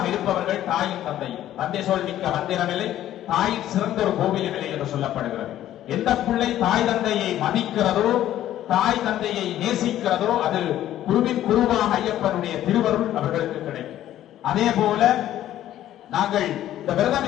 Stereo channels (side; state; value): right; quieter; 12.6 dB